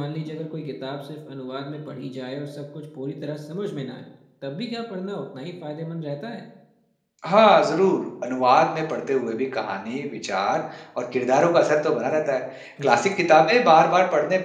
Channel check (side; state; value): both; identical; correlation 1.00